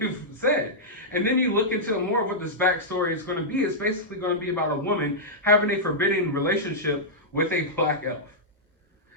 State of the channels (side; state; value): both; normal; correlation -0.10